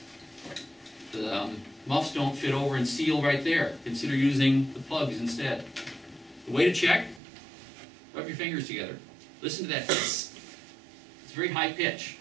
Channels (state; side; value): drops out; left; at 7.2 s